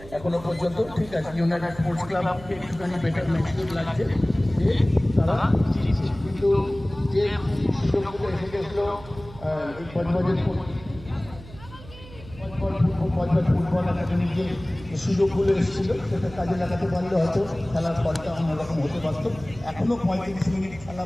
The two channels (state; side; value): noise; right; hum, 17 dB below the sound